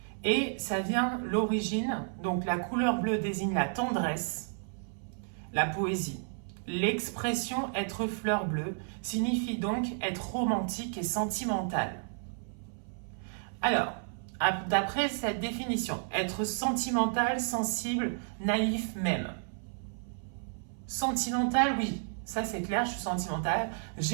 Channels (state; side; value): silent; left; 56 dB below the other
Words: Et ça vient l'origine, donc la couleur bleue désigne la tendresse, la poésie. L'expression être fleur bleue signifie donc être romantique et sentimental. Alors, d'après cette définition, être sentimental, sensible, naïf même. Sentimental, oui, ça c'est clair, je suis sentimentale,